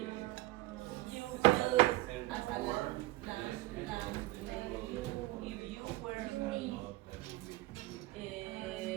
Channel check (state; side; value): quieter; left; 19.3 dB